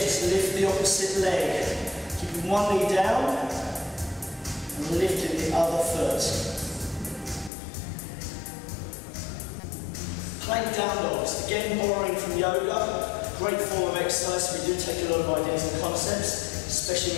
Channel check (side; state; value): right; drops out; at 7.5 s